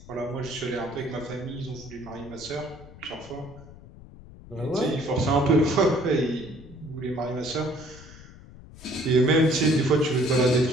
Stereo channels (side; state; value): left; noise; rumble, 19 dB below the sound